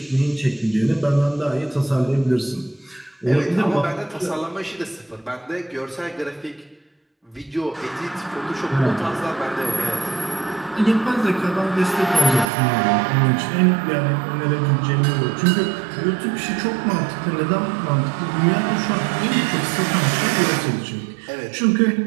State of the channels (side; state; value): left; drops out; at 12.5 s